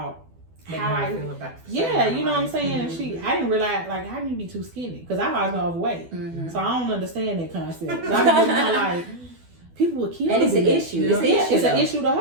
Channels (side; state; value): left; late; 12 ms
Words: how I feel about you know what I'm saying? And I didn't realize like, how can you be too skinny? Because I've always been overweight, so I don't understand that concept. I'm like, people would kill. And it's an issue. It's an issue to